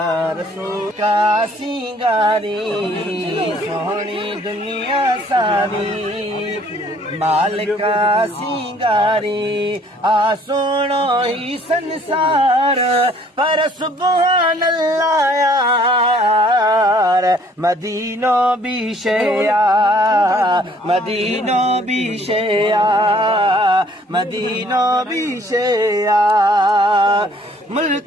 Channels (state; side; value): normal; both; correlation 0.59